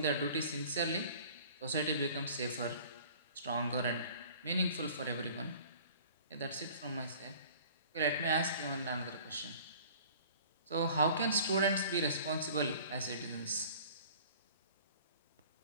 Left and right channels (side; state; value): both; inverted; correlation -0.48